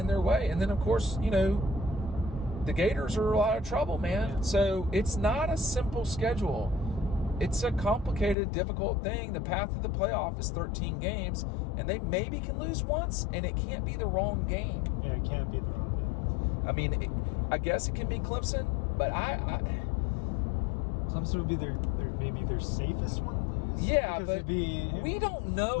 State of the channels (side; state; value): right; drops out; at 8.3 s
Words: their way. And then, of course, the Gators are a lot of trouble, man. Yeah. So it's not a simple schedule. It's a complicated, difficult thing. The path to the playoff is 13 games, and they maybe can lose once, and it can't be the wrong game. Yeah, it can't be the wrong game. I mean, I guess it can be Clemson, but Clemson would be maybe their safest one to lose. Yeah, but we don't